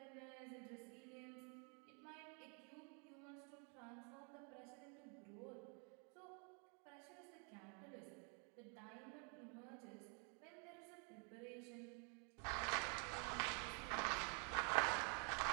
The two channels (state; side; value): quieter; left; 37.6 dB